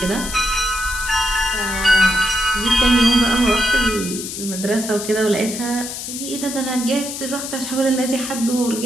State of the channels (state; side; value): noise; left; hiss, 7 dB below the sound